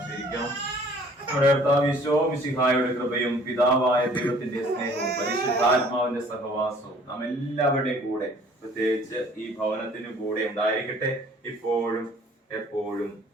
നമ്മുടെ കർത്താവ് ഈശോ മിശിഹായുടെ കൃപയും പിതാവായ ദൈവത്തിന്റെ സ്നേഹവും പരിശുദ്ധാത്മാവിന്റെ സഹവാസവും നാം എല്ലാവരുടെയും കൂടെ, പ്രത്യേകിച്ച് ഈ ഭവനത്തിനും കൂടെ ഉണ്ടായിരിക്കട്ടെ, ഇപ്പോഴും എപ്പോഴും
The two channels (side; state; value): both; normal; correlation 0.54